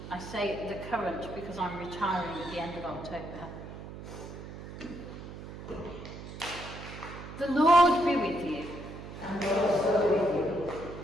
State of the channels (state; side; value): noise; right; hum, 11 dB below the sound